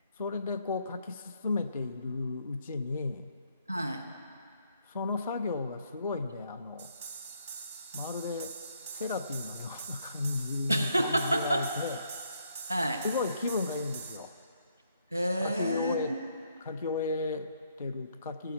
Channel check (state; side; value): inverted; both; correlation -0.72